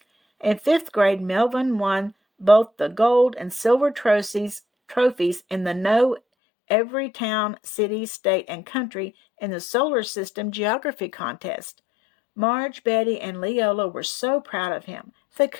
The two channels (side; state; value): right; drops out; at 6.2 s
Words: In fifth grade, Melvin won both the gold and silver trophies in the Know Every Town, City, State, and Country in the Solar System Geography Contest. Marge, Betty, and Leola were so proud of him. They